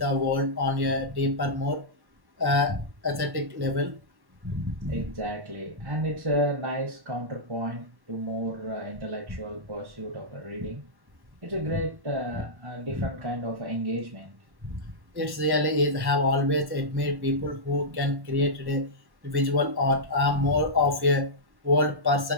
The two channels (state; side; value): late; left; 1.1 ms